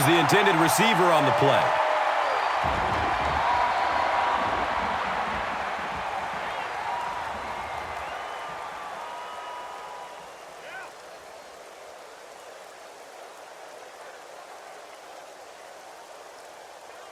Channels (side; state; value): both; identical; correlation 1.00